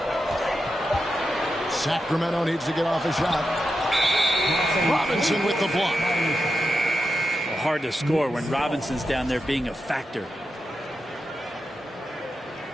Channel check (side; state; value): both; normal; correlation 0.88